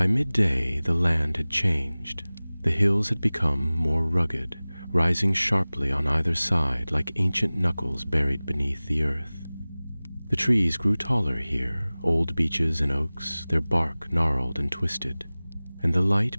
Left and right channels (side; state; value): both; inverted; correlation -0.99